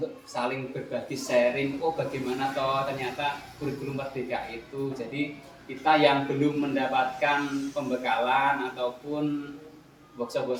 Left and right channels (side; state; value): both; identical; correlation 1.00